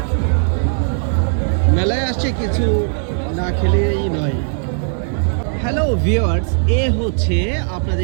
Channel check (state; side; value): silent; left; 67 dB below the other